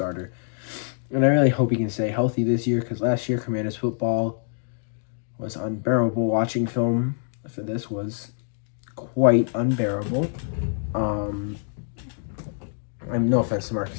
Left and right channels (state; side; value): silent; right; digital silence